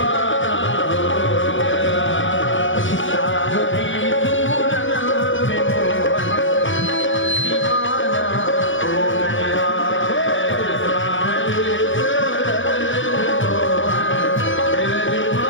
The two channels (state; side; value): late; right; 0.56 ms